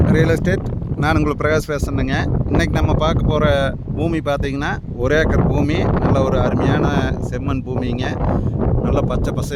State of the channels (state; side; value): identical; both; correlation 1.00